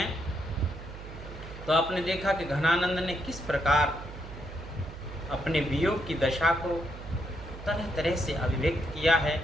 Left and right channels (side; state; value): right; noise; hum, 12 dB below the sound